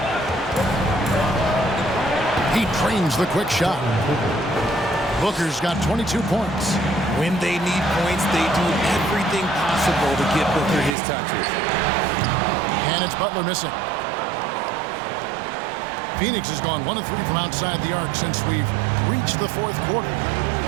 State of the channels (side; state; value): left; drops out; at 11.0 s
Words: He trains the quick shot. Booker's got 22 points. When they need points, they do everything possible to get Booker his touches. And it's Butler missing. Phoenix has gone 1 of 3 from outside the arc since we've reached the fourth quarter.